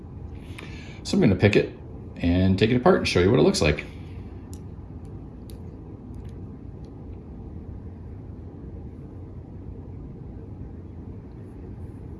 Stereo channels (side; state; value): both; identical; correlation 1.00